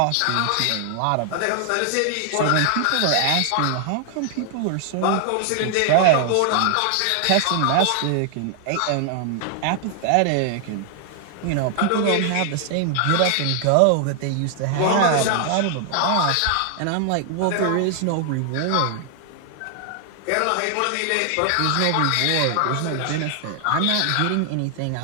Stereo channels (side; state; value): both; different; correlation 0.00